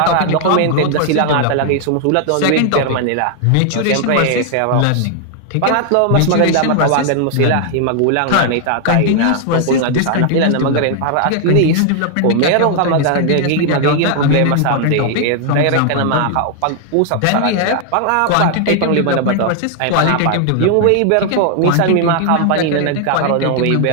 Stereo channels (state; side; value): different; both; correlation 0.00